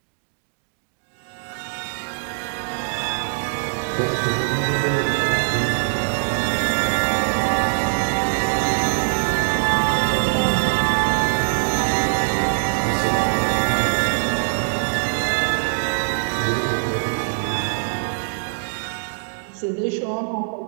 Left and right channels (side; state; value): left; silent; digital silence